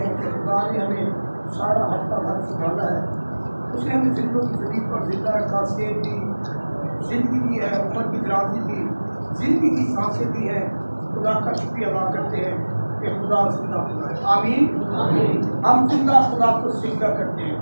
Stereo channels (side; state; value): both; inverted; correlation -1.00